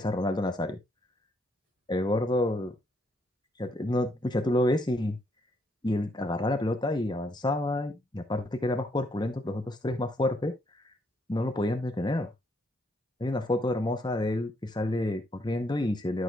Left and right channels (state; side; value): normal; both; correlation 0.72